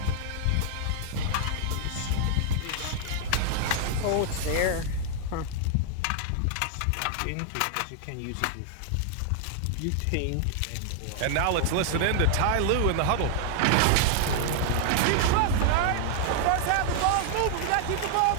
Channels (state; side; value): different; both; correlation 0.00